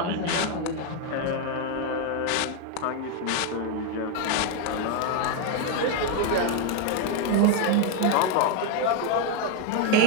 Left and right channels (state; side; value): different; both; correlation 0.01